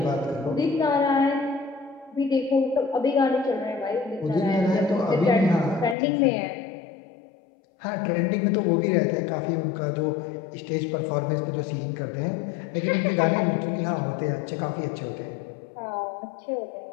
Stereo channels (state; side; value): drops out; right; at 6.0 s